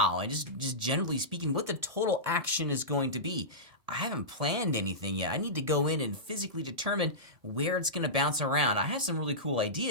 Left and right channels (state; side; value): late; left; 1.7 ms